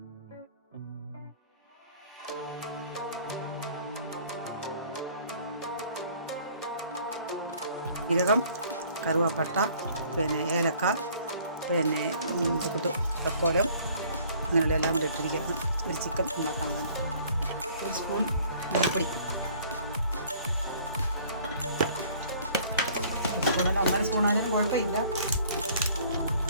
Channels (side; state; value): both; inverted; correlation -0.55